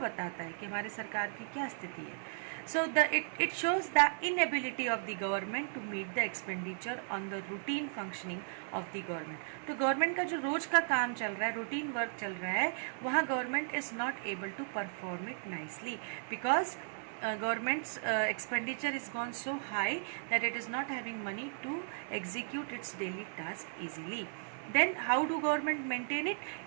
कि हमारे सरकार की क्या स्थिति है. So it shows the inability of the government to meet the expenditure on the routine functioning of the government. तो गवर्नमेंट का जो रोज का काम चल रहा है, रूटीन वर्क चल रहा है, वहाँ government is not able to perform it nicely because government's expenditure is gone so high that it is not having money to execute its daily task easily. Then how do government maintain it?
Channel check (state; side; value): silent; left; digital silence